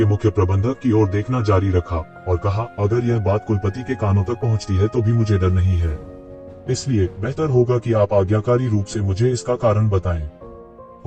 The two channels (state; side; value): identical; both; correlation 1.00